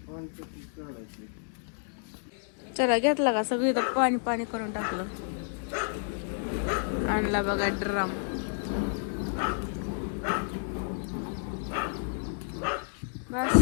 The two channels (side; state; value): right; silent; digital silence